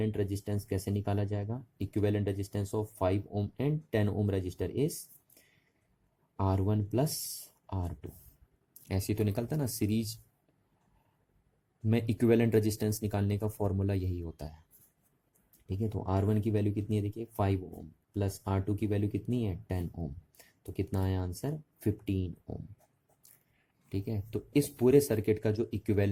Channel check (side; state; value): both; identical; correlation 1.00